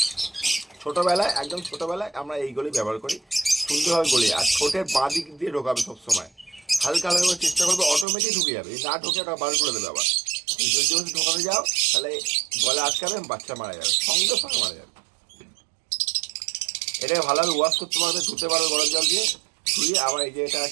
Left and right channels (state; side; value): drops out; left; at 8.1 s